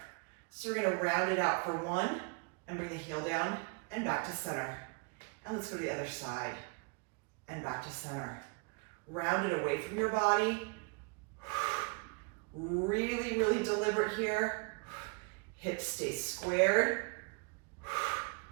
So we're going to round it out for 1 and bring the heel down and back to center. And let's go to the other side and back to center. Round it away from your body. Really, really deliberate here. Hips stay squared.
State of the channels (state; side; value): quieter; left; 33.5 dB